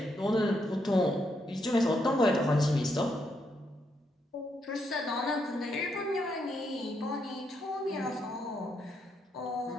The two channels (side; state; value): both; normal; correlation 0.78